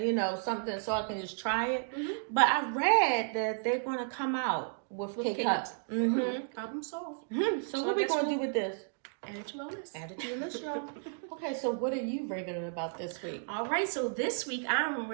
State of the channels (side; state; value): left; silent; digital silence